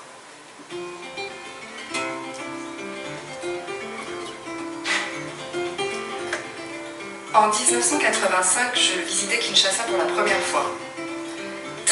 En 1985, je visitais Kinshasa pour la première fois.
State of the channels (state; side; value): identical; both; correlation 1.00